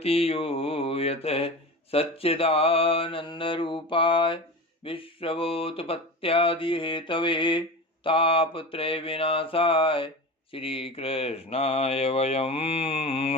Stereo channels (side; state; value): both; normal; correlation 0.29